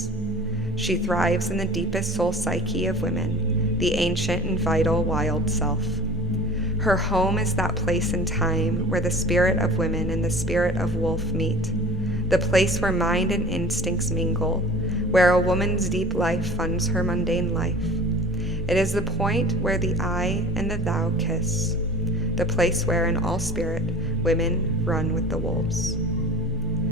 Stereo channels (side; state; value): both; normal; correlation 0.41